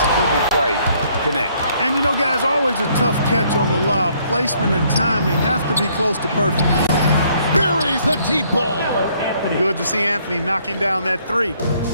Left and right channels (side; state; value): both; inverted; correlation -0.66